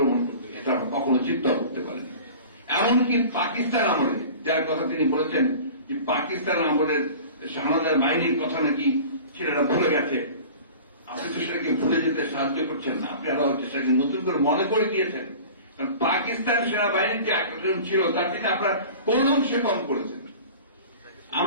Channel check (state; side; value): inverted; both; correlation -0.40